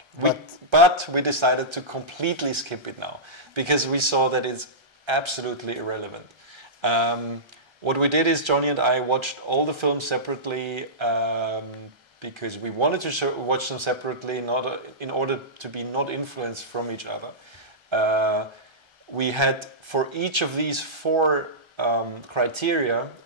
But we decided to completely skip it now, because we saw that it's absolutely irrelevant. What we did is Johnny and I watched all the films separately, because we wanted to watch them separately, in order to be not influenced from each other. We had, for each of these 4 criteria,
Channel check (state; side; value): late; left; 1.3 ms